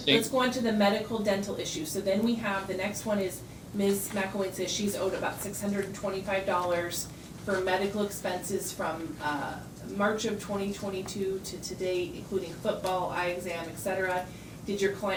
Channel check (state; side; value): identical; both; correlation 1.00